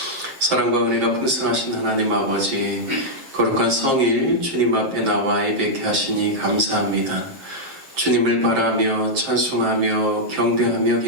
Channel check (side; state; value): left; late; 7.5 ms